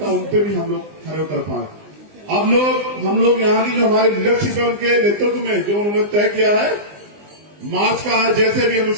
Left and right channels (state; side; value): late; left; 20 ms